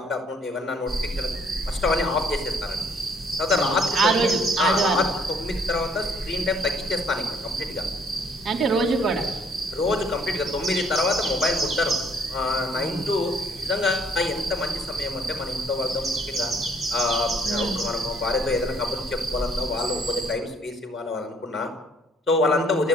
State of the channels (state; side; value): normal; both; correlation 0.64